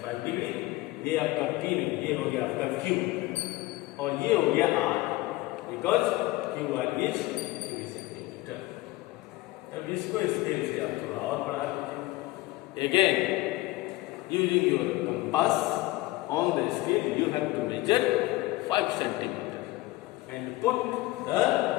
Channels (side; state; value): right; quieter; 19.1 dB